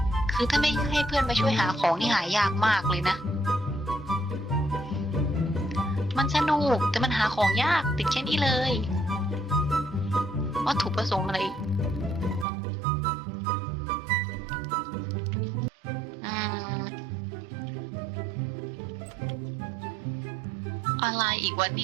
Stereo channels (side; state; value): left; drops out; at 12.5 s